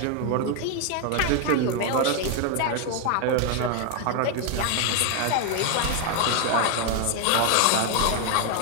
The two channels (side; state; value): both; different; correlation 0.01